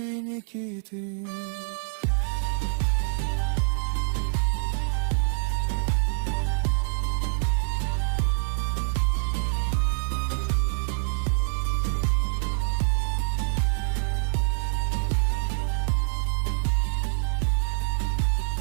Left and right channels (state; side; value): silent; left; 61 dB below the other